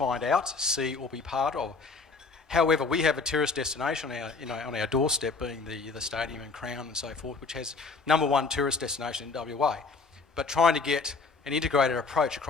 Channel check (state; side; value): quieter; right; 4.3 dB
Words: out, see or be part of. However, we have a tourist destination on our doorstep, being the stadium and Crown and so forth, which has #1 tourist destination in WA. But trying to get an integrated approach